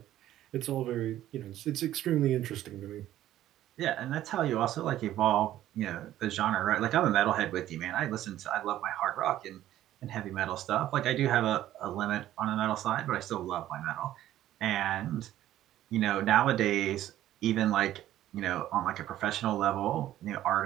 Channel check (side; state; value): left; quieter; 13.2 dB